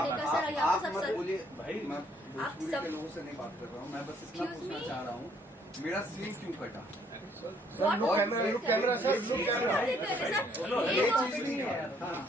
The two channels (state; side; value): normal; both; correlation 0.65